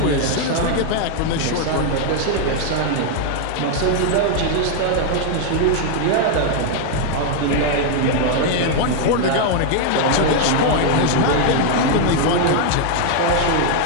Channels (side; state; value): both; different; correlation 0.00